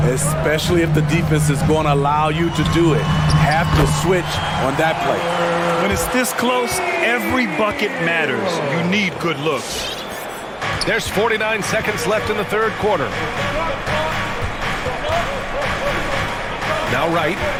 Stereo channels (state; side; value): identical; both; correlation 1.00